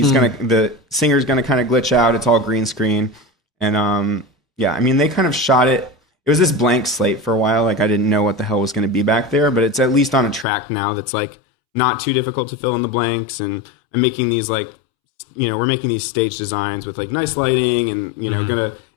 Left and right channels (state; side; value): drops out; right; at 10.5 s